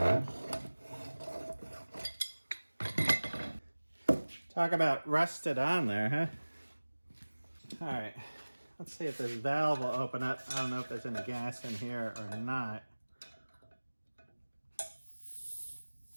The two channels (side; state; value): both; inverted; correlation -1.00